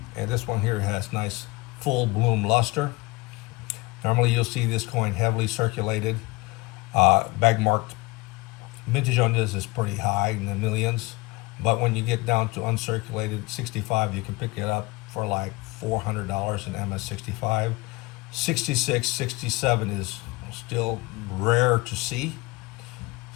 And this one here has nice full bloom luster. Normally you'll see this coin heavily circulated. Bag marked vintage on this is pretty high in the millions. But when you get down to uncirculated 65, you can pick it up for like $400 in MS65. 66, 67 is still rare to see.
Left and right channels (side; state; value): right; quieter; 23.7 dB